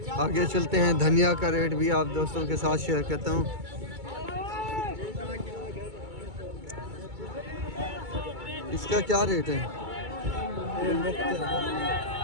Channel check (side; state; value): left; late; 2.3 ms